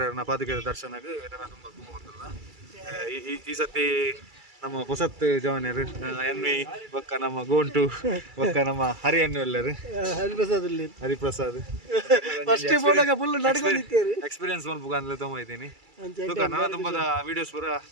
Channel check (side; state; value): left; late; 2.3 ms